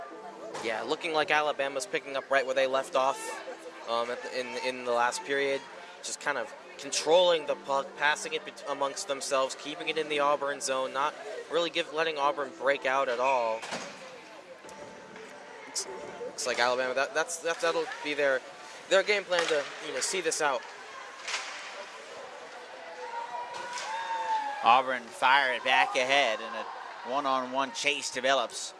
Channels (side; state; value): both; identical; correlation 1.00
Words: Yeah, looking like Alabama's picking up right where they left off in the last period. Just kind of controlling the puck, passing it amongst themselves, keeping it in the Auburn zone, not really letting Auburn break out at all. Looks like Alabama, that'll be their game plan to see this out. Auburn fire it back ahead, and a one-on-one chase develops